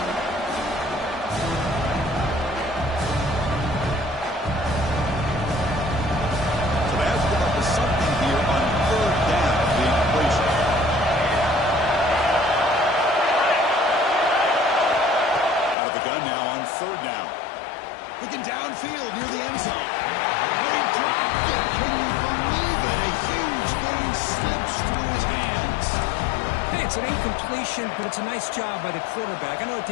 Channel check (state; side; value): drops out; right; at 15.8 s